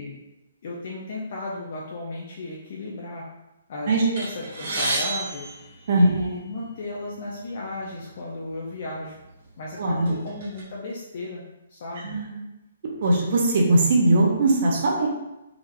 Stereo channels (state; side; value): inverted; both; correlation -0.75